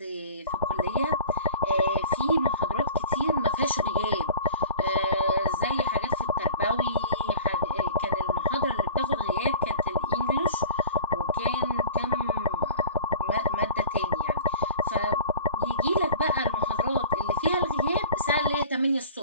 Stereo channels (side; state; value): both; inverted; correlation -0.42